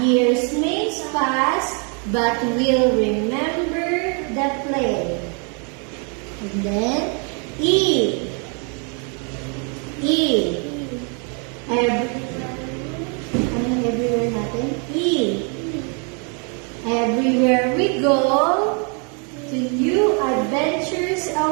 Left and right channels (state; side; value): quieter; left; 37.7 dB